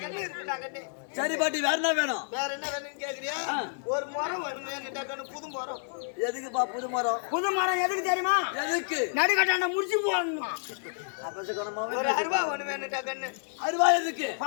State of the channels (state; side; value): silent; right; digital silence